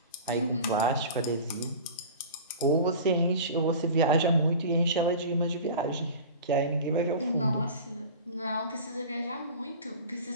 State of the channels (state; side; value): inverted; both; correlation -0.36